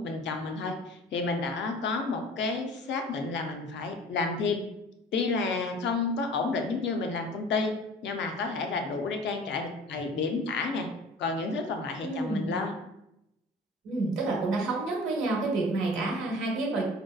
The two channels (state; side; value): normal; both; correlation 0.43